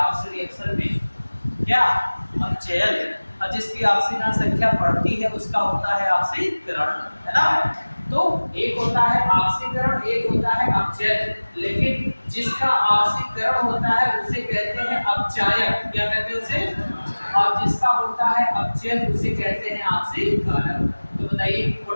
रिएक्शन में, क्या अपचयन। और जिसकी ऑक्सीकरण संख्या बढ़ती है उसका होता है ऑक्सीकरण, है ना। तो एक होता है ऑक्सीकरण, एक होता है अपचयन, लेकिन जिसका ऑक्सीकरण होता है उसे कहते हैं अपचायक, क्या कहते हैं उसे? और जिसका होता है अपचयन उसे कहते हैं ऑक्सीकारक। तो बताइए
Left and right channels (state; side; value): inverted; both; correlation -1.00